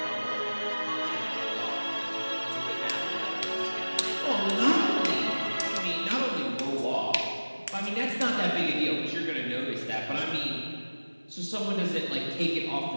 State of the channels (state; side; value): inverted; both; correlation -1.00